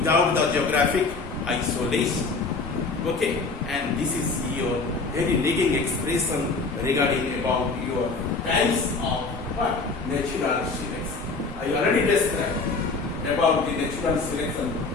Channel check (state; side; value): quieter; right; 4.0 dB